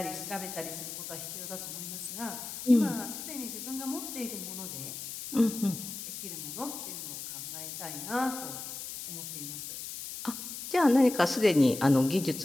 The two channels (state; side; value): noise; left; hiss, 8 dB below the sound